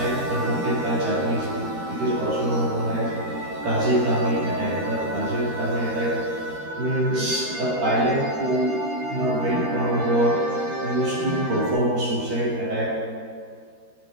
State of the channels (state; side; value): late; left; 13 ms